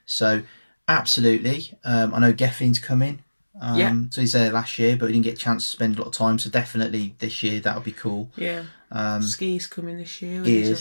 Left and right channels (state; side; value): inverted; both; correlation -1.00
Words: So absolutely, I know Geffin's coming. So he's there last year, but we didn't get a chance to spend a lot of time. So definitely this year that'll be cool. yeah. Ski's coming this year. He